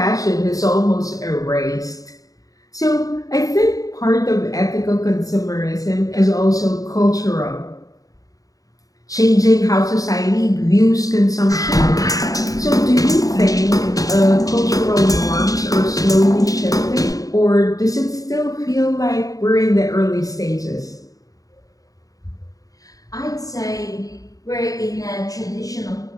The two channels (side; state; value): right; late; 0.17 ms